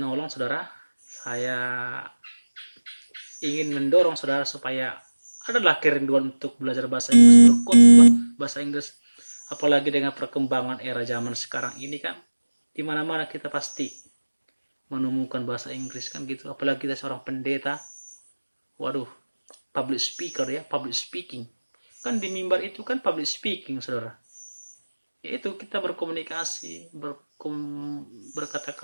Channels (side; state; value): both; inverted; correlation -1.00